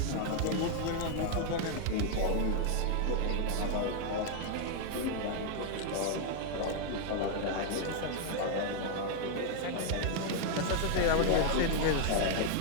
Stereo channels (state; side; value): different; both; correlation 0.00